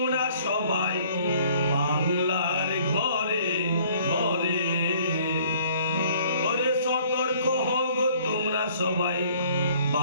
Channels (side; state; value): both; inverted; correlation -0.57